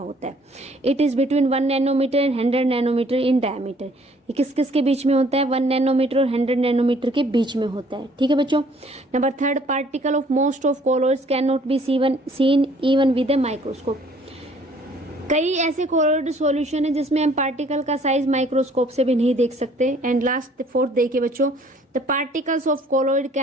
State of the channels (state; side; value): normal; both; correlation 0.59